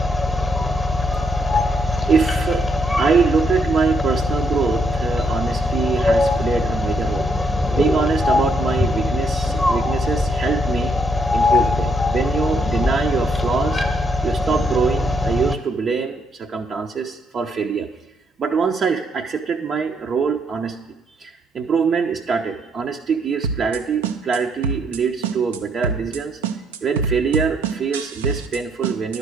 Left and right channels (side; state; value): both; normal; correlation 0.74